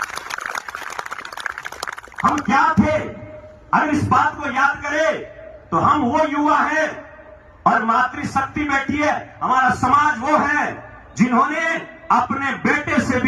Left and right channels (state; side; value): identical; both; correlation 1.00